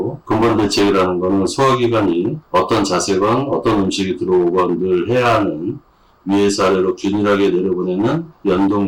근본 대책이라는 거는 소화기관이 어떤 자세건 어떤 음식이 들어오건 늘 해야 하는 위에서 아래로 균일하게 내려보내는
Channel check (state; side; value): identical; both; correlation 1.00